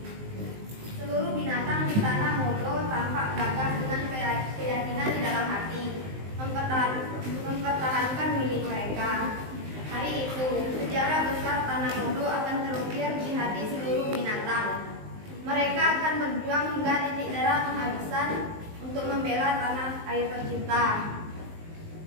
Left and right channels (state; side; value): late; left; 19 ms